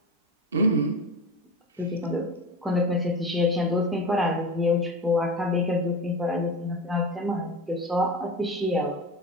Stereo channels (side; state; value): both; normal; correlation 0.26